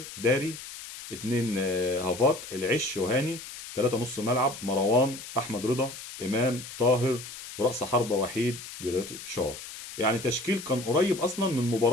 داري، 2 هافات العش وهاني، 3 نص ملعب: مروان، احمد رضا، امام طاهر، ورأس حربة وحيد جريتشار. يعني تشكيل كان قريب اصلا من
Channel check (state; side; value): noise; left; hiss, 12 dB below the sound